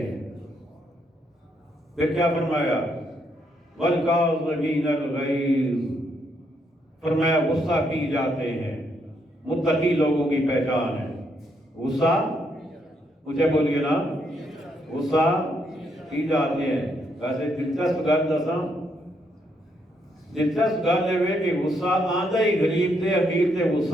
پھر کیا فرمایا, وَالْكَاظِمِينَ الْغَيْظَ, فرمایا غصہ پی جاتے ہیں. متقی لوگوں کی پہچان ہے غصہ. مجھے بولیے نا, غصہ پی جاتے ہیں. ویسے دلچسپ گل دساں, دلچسپ گل ہے کہ غصہ آندا ہی غریب تے امیر تے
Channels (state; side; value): normal; both; correlation 0.75